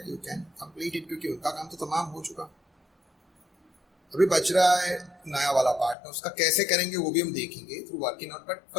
यू कैन कंप्लीट इट, क्योंकि उनका काम तो तमाम हो चुका। अभी बच रहा है नया वाला पार्टनर, उसका कैसे करेंगे वो भी हम देखेंगे through working out. But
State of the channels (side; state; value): right; drops out; at 6.0 s